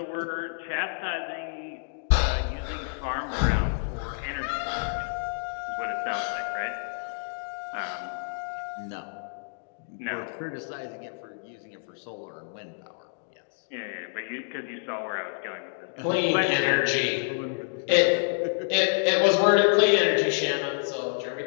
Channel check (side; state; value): right; silent; digital silence